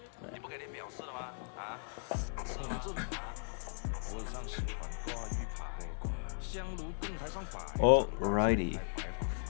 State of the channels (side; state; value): right; silent; 53 dB below the other